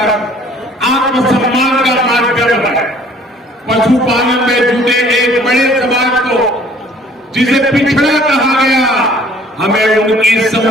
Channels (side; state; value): both; normal; correlation 0.55